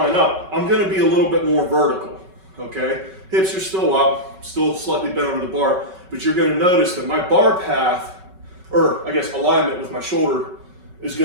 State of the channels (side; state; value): left; late; 5.3 ms